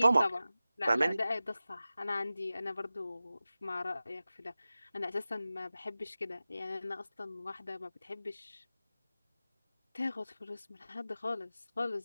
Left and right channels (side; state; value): both; inverted; correlation -0.96